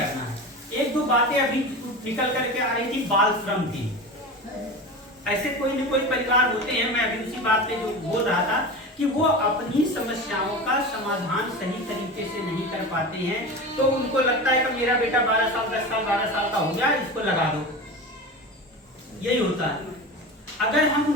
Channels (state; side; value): normal; both; correlation 0.28